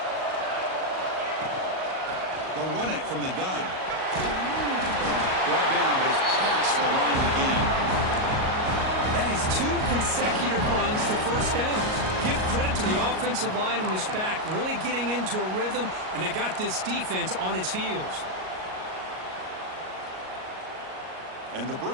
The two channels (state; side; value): late; left; 38 ms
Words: They'll run it from the gun. Brought down, but it's past the line of the game. That is 2 consecutive runs for first downs. Give credit to the offensive line in this back, really getting into a rhythm, and they got this defense on its heels. And the